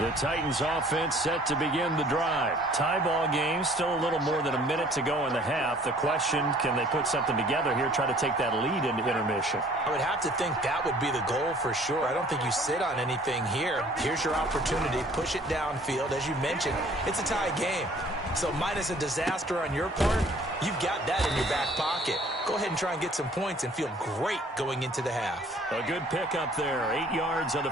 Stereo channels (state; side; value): normal; both; correlation 0.55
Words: Titans offense set to begin the drive. Tie ball game, still a little more than a minute to go in the half. The question, can they put something together here, try to take that lead into intermission? I would have to think that would be the goal for sure. I don't think you sit on anything here. Here's your opportunity. Push it downfield. As you mentioned, it's a tie game. So minus a disaster on your part, you've got that in your back pocket. Go ahead and try and get some points and feel great going into the half. A good pickup there. 8 yards on